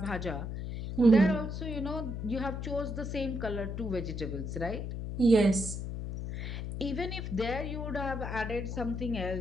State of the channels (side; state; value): left; noise; hum, 5 dB below the sound